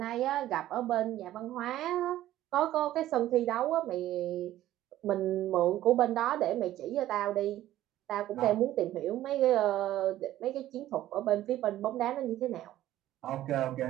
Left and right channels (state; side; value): quieter; left; 13.8 dB